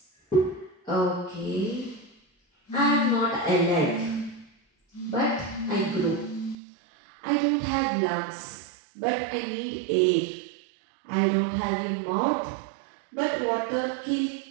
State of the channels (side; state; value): left; drops out; at 6.6 s